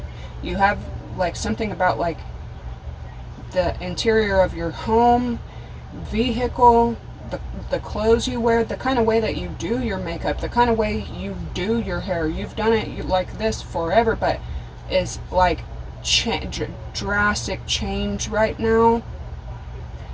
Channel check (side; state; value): both; identical; correlation 1.00